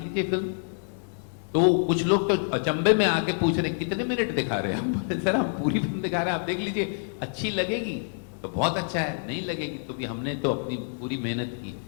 फिल्म। तो कुछ लोग तो अचंभे में आके पूछ रहे कितने मिनट दिखा रहे हैं हम। सर हम पूरी फिल्म दिखा रहे हैं, आप देख लीजिए, अच्छी लगेगी तो बहुत अच्छा है, नहीं लगेगी तो भी हमने तो अपनी पूरी मेहनत की।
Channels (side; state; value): right; silent; 60 dB below the other